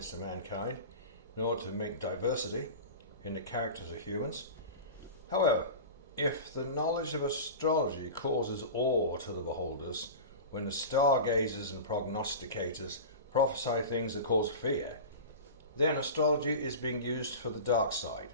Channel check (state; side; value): inverted; both; correlation -0.31